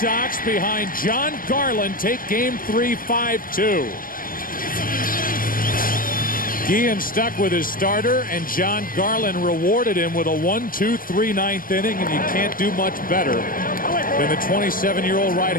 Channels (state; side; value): late; right; 0.41 ms